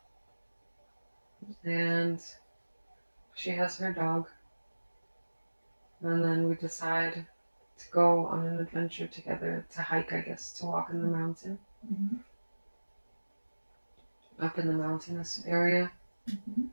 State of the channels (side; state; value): both; inverted; correlation -1.00